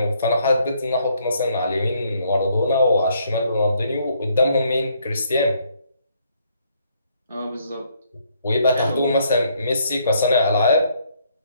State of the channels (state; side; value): inverted; both; correlation -0.69